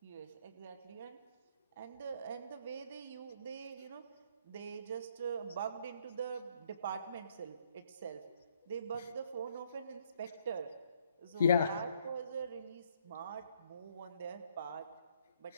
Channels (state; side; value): inverted; both; correlation -0.67